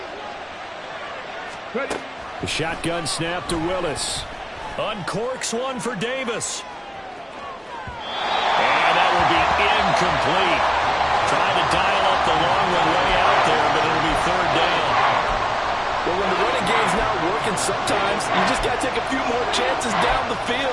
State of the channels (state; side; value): identical; both; correlation 1.00